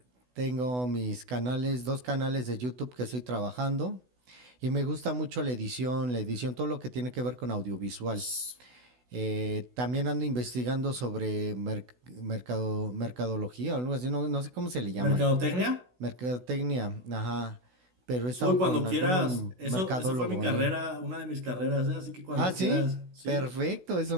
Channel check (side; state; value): left; late; 16 ms